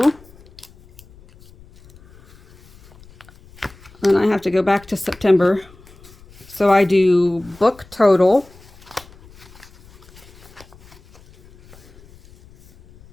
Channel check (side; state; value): left; noise; rumble, 25 dB below the sound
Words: Then I have to go back to September. So I do book total.